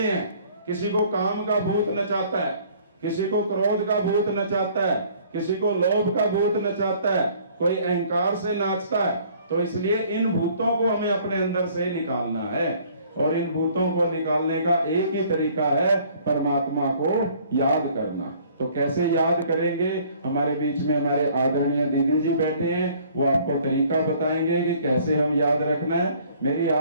किसी को काम का भूत नचाता है, किसी को क्रोध का भूत नचाता है, किसी को लोभ का भूत नचाता है, कोई अहंकार से नाचता है। तो इसलिए इन भूतों को हमें अपने अंदर से निकालना है और इन भूतों को निकालने का एक ही तरीका है, परमात्मा को याद करना। तो कैसे याद करेंगे, हमारे बीच में हमारे आदरणीय दीदी जी बैठे हैं, वो आपको तरीका बताएंगे कि कैसे हम याद रखना है। मेरी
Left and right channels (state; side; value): inverted; both; correlation -0.57